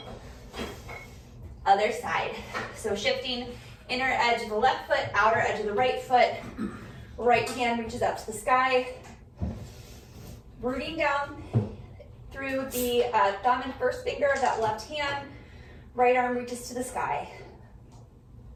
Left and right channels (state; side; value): identical; both; correlation 1.00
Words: Other side. So shifting inner edge of the left foot, outer edge of the right foot. Right hand reaches up to the sky. Rooting down through the thumb and first finger of that left hand. Right arm reaches to the sky.